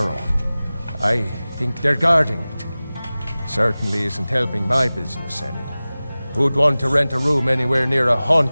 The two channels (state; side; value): inverted; both; correlation -0.98